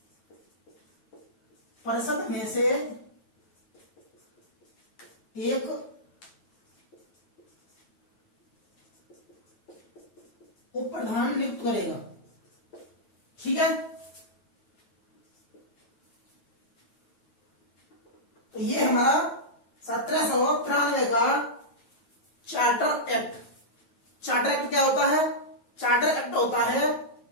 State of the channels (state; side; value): late; right; 9.2 ms